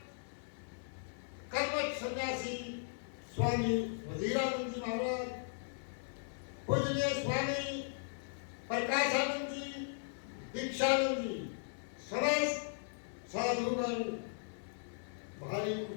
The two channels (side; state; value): right; silent; 53 dB below the other